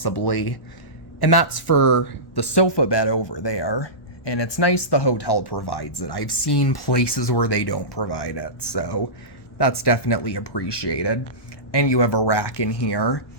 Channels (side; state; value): right; late; 1.1 ms